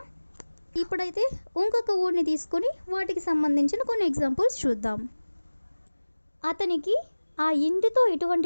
ఇప్పుడైతే ఇంకొక వర్డ్ని తీసుకొని వాటికి సంబంధించిన కొన్ని ఎగ్జాంపుల్స్ చూద్దాం. అతనికి ఆ ఇంటితో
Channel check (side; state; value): both; inverted; correlation -1.00